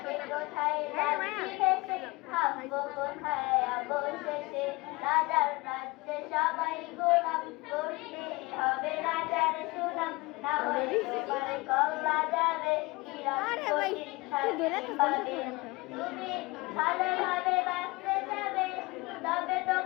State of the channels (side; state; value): right; quieter; 23.5 dB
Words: কে কোথায় যাচ্ছি ভেসে, থামবো কোথায় অবশেষে। রাজার রাজ্যে সবাই গোলাম, করতে হবে রাজার সুনাম, না হলে তোমার কল্লা যাবে, বিরাট কঠিন শাস্তি পাবে। তুমি ভালোভাবে বাঁচতে যাবে, তবে